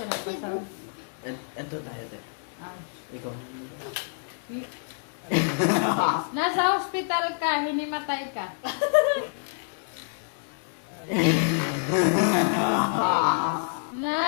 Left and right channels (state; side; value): silent; right; digital silence